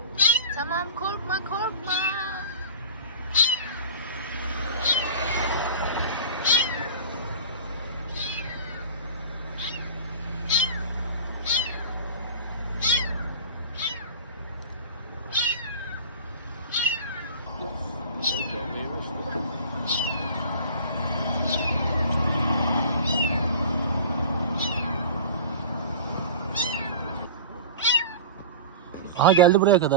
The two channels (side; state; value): both; inverted; correlation -0.36